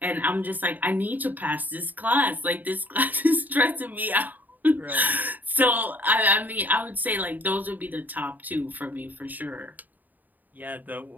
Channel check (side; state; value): left; late; 0.084 ms